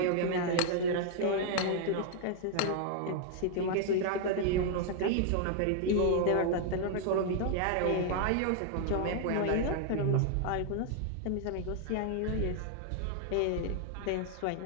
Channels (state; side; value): different; both; correlation 0.00